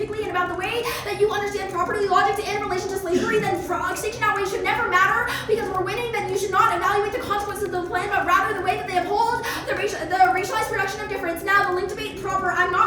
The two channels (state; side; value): identical; both; correlation 1.00